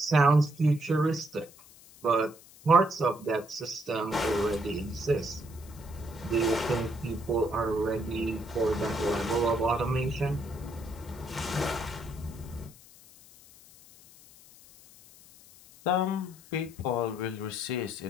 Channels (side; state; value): left; noise; hiss, 23 dB below the sound